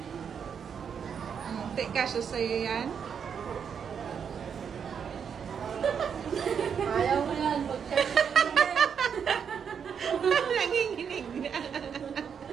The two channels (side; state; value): left; quieter; 7.2 dB